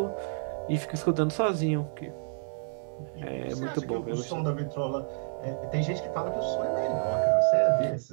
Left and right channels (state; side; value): silent; left; digital silence